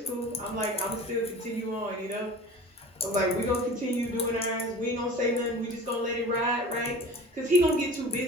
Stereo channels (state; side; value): normal; both; correlation 0.40